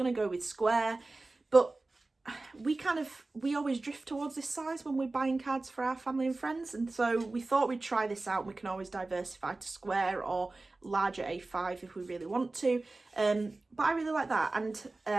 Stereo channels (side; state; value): left; quieter; 3.2 dB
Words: to go with square, but we always drift towards this size when we're buying cards for our family and friends, and so we thought we'd try this out. We can always diversify to square or larger A5 if we really want to, but I really like that.